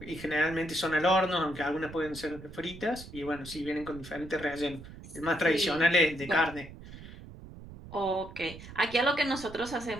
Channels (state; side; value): noise; right; rumble, 15 dB below the sound